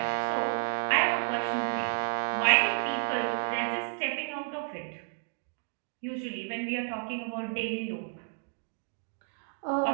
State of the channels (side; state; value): left; silent; 57 dB below the other